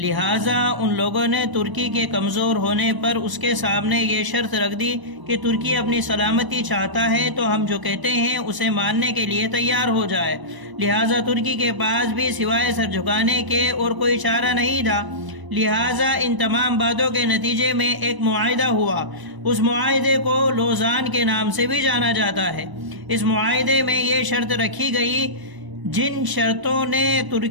ان لوگوں نے ترکی کے کمزور ہونے پر اس کے سامنے یہ شرط رکھ دی کہ ترکی اپنی سلامتی چاہتا ہے تو ہم جو کہتے ہیں اسے ماننے کے لیے تیار ہو جائے۔ لہٰذا ترکی کے پاس بھی سوائے سر جھکانے کے اور کوئی چارہ نہیں تھا۔ لہٰذا ان تمام باتوں کے نتیجے میں ایک معاہدہ ہوا۔ اس معاہدے کو لوزان کے نام سے بھی جانا جاتا ہے۔ اس معاہدے میں یہ شرط رکھی گئی، جن شرطوں نے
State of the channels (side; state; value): left; late; 1.0 ms